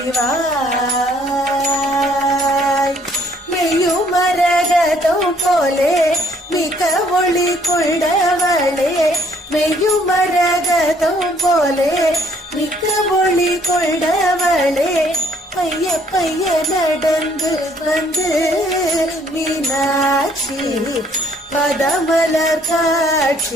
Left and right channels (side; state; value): both; normal; correlation 0.63